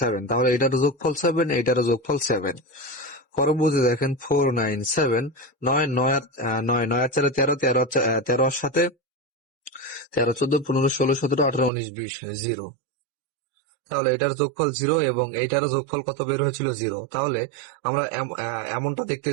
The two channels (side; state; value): left; drops out; at 11.7 s